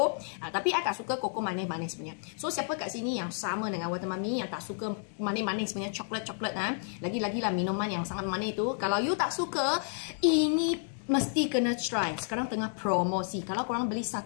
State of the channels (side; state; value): right; silent; 57 dB below the other